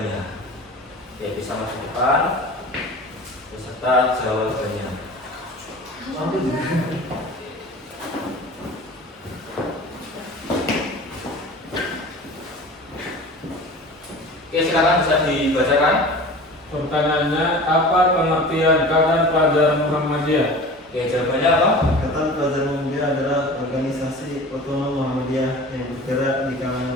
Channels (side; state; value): both; normal; correlation 0.38